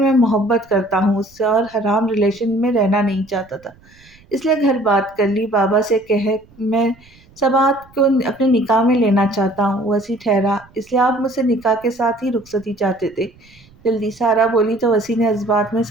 محبت کرتا ہوں اس سے اور حرام ریلیشن میں رہنا نہیں چاہتا تھا، اس لیے گھر بات کر لی، بابا سے کہہ میں سبات کو اپنے نکاح میں لینا چاہتا ہوں۔ وسیع ٹھہرا، اس لیے آپ مجھ سے نکاح کے ساتھ ہی رخصتی چاہتے تھے؟ جلدی سارا بولی تو وسیع نے جذبات میں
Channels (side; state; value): right; noise; rumble, 27 dB below the sound